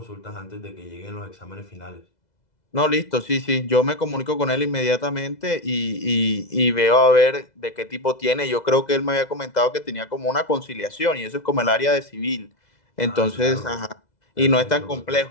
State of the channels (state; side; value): late; right; 2.0 ms